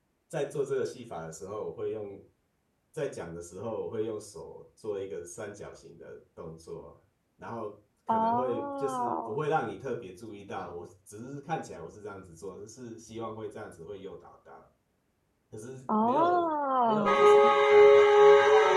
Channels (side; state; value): both; identical; correlation 1.00